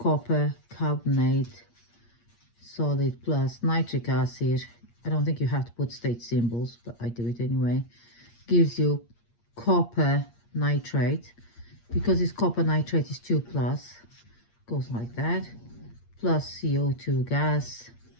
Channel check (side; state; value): right; late; 8.6 ms